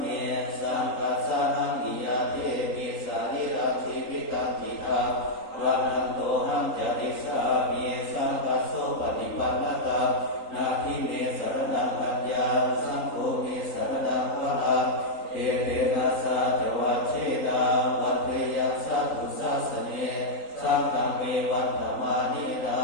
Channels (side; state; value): right; late; 3.9 ms